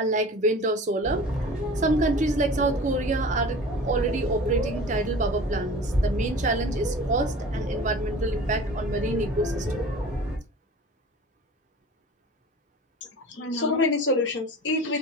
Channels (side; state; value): both; normal; correlation 0.40